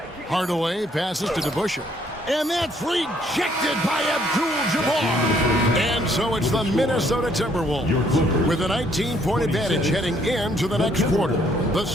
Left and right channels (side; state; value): both; normal; correlation 0.66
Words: Hardaway passes to DeBusschere. And that's rejected by Abdul-Jabbar. And so it's the Minnesota Timberwolves with a 19-point advantage heading into the next quarter. The